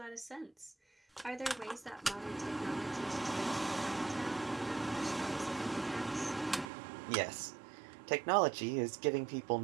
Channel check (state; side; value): drops out; left; at 6.7 s